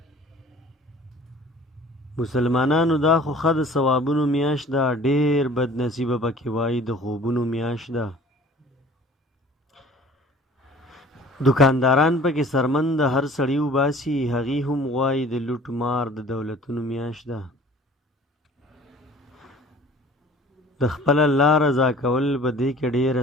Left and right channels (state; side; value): normal; both; correlation 0.48